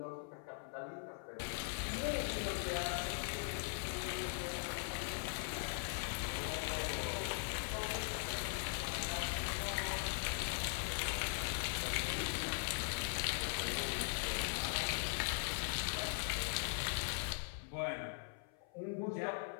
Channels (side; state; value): right; silent; 50 dB below the other